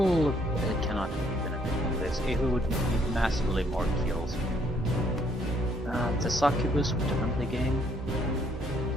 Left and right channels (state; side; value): normal; both; correlation 0.67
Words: cannot benefit from this. It would need massively more kills. The succubus would definitely gain.